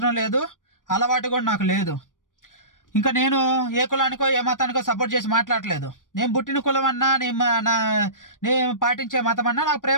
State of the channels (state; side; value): late; right; 0.88 ms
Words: లేదు, అలవాటు కూడా నాకు లేదు. ఇంకా నేను ఏ కులానికో ఏ మతానికో సపోర్ట్ చేసి మాట్లాడలేదు. నేను పుట్టిన కులం అన్నా, నేను పాటించే మతం అన్నా నాకు